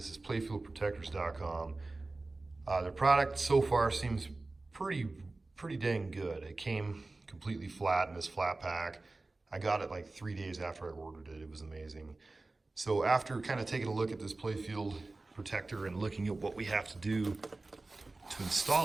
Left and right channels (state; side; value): quieter; left; 3.2 dB